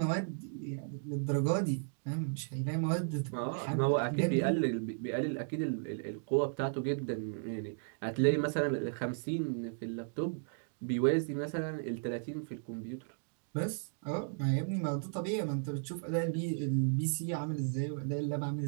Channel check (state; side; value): silent; left; digital silence